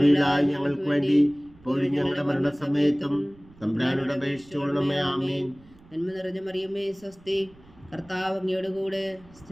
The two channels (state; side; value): noise; right; rumble, 26 dB below the sound